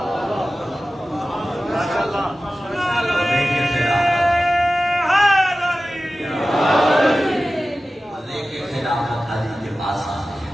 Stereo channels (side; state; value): both; normal; correlation 0.95